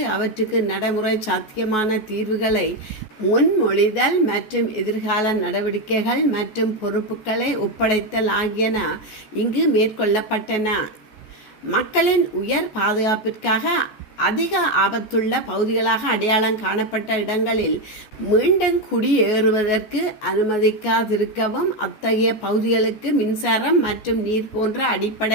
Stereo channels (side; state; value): right; late; 14 ms